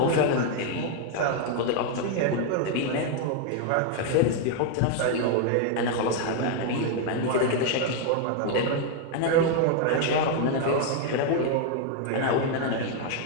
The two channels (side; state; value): both; different; correlation 0.00